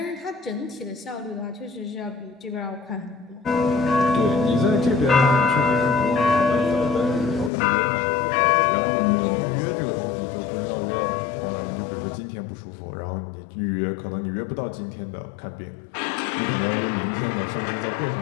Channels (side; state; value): right; drops out; at 7.5 s